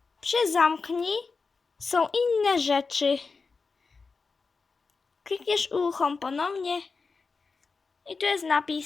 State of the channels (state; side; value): quieter; right; 4.5 dB